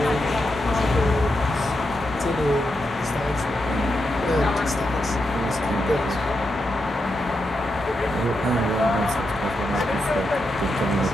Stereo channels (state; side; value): normal; both; correlation 0.85